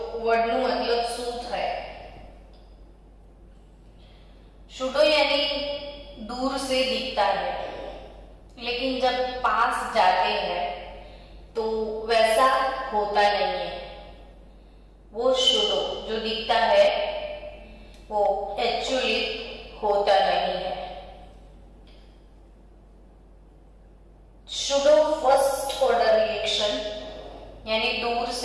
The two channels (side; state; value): both; identical; correlation 1.00